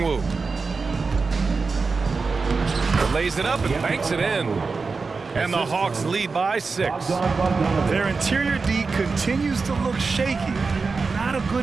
Lays it up and banks it in. And the Hawks lead by 6. Their interior D continues to look shaky. Not a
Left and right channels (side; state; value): left; quieter; 4.4 dB